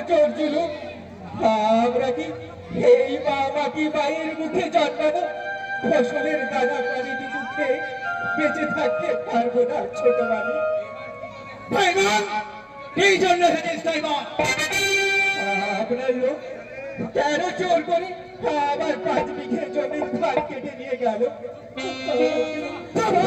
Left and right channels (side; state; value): both; identical; correlation 1.00